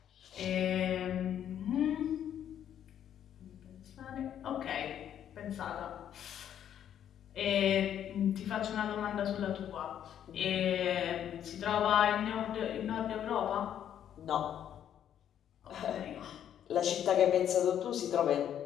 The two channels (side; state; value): right; quieter; 9.9 dB